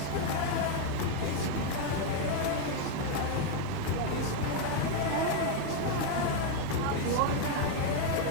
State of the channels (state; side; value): different; both; correlation 0.01